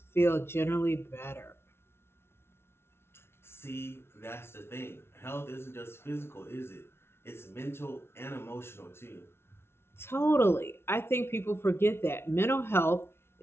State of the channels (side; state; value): right; late; 0.12 ms